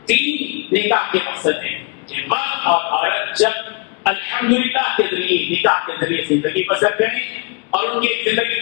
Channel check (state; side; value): quieter; right; 34.3 dB